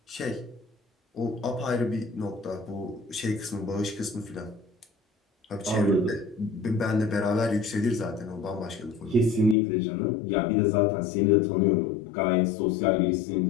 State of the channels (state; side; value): drops out; right; at 9.6 s